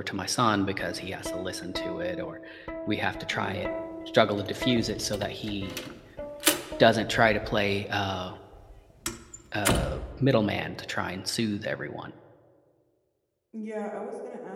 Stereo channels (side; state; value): both; identical; correlation 1.00